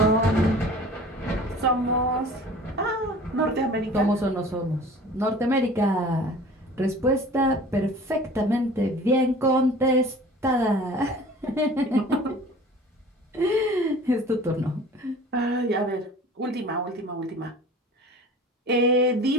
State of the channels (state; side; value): normal; both; correlation 0.44